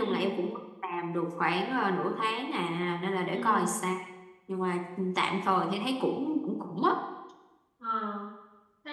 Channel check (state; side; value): identical; both; correlation 1.00